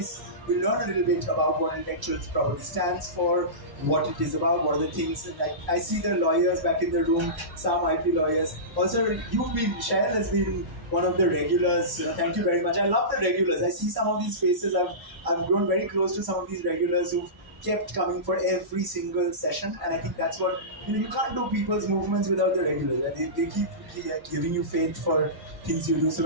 We'll learn a little bit about what intellectual property stands for, what it is about, what are the things. And I see the lawyers back in the room, some IP lawyers. Also, Cheryl has been one of the regulars. Thank you very much. I love the regulars. I see some of these faces. I've grown very close to some of these regulars who've kept coming for every single session, and I think that's what you can't do people's movements without the regulars. They keep giving you faith for things you do. So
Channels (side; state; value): left; late; 1.0 ms